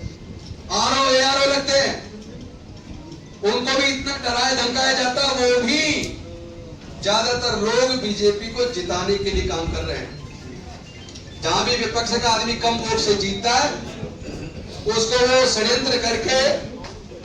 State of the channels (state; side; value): identical; both; correlation 1.00